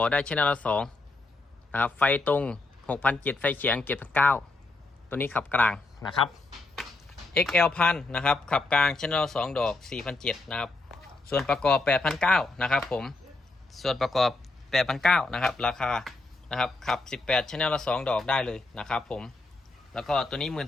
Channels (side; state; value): right; quieter; 3.2 dB